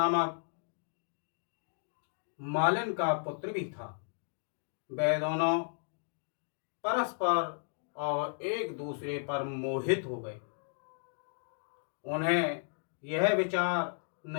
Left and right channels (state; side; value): silent; right; digital silence